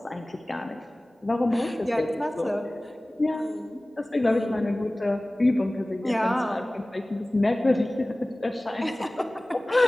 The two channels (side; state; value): both; normal; correlation 0.98